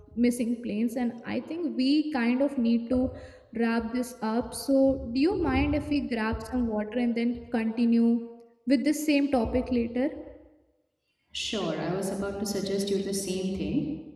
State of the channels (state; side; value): identical; both; correlation 1.00